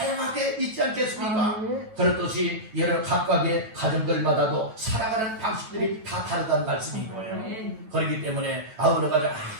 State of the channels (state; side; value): late; left; 9.1 ms